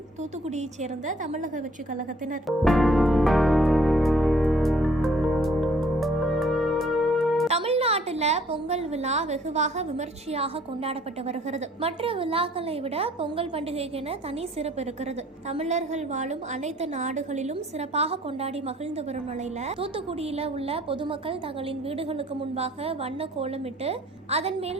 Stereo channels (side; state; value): both; normal; correlation 0.60